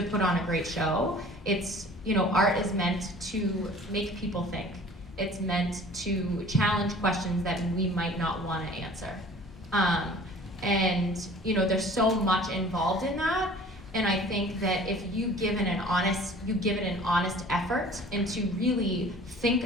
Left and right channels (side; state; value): both; normal; correlation 0.47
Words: put on a great show. It's, you know, art is meant to make people think. It's meant to challenge questions that we might not want to answer. And, you know, there's so much involved in that. And I think that if you give it an honest effort into really think